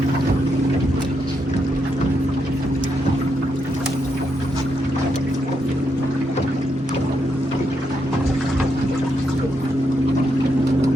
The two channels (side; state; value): both; normal; correlation 0.81